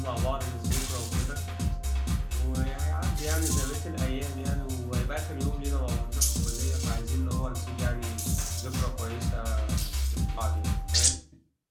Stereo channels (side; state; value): both; identical; correlation 1.00